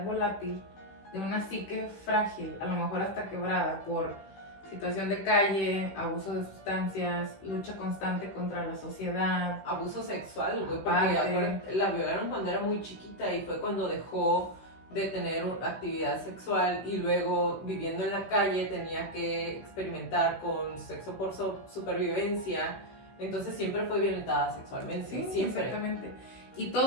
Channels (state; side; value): late; right; 16 ms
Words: volátil, de una psique frágil, a lo mejor hasta quebrada por situación de calle, abuso de sustancias, lucha constante contra la sociedad. Abuso sexual, güey, porque la violaron cuando era muy chiquita y fue cuando dejó de tener actividad sexual, y luego viviendo en la calle tenía que experimentar con sexo por supervivencia. Entonces siempre fue violentada sexualmente. Sí, siempre. Exactamente. Y